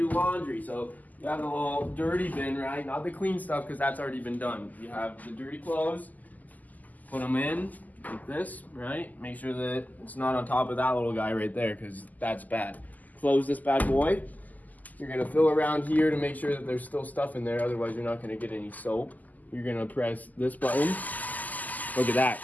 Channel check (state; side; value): late; right; 0.081 ms